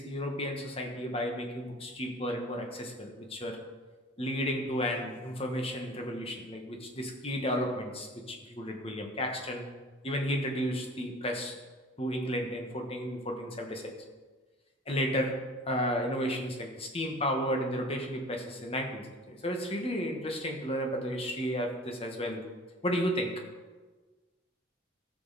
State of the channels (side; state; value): both; normal; correlation 0.44